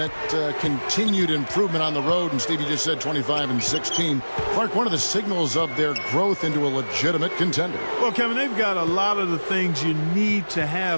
continued improvement on the road, and Stevie just said 25-16. Clark, one of the signals of their growth into a legitimate contender. Well, Kevin, they've got a lot of the things you need to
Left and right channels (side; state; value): both; inverted; correlation -1.00